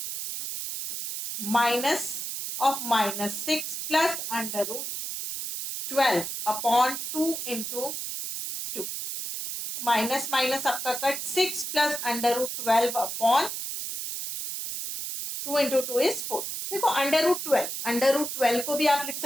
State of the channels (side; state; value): right; noise; hiss, 5 dB below the sound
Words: minus of minus 6 plus under root 12 upon 2 into minus minus आपका cut. 6 plus under root 12 upon 2 into 2 is 4. देखो अंडर रूट 12 को भी आप लिख